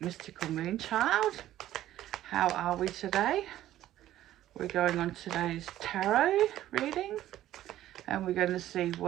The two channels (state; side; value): quieter; left; 13.4 dB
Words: Mystical Moonchild. How are we today? We're going on today's tarot reading and we're going to see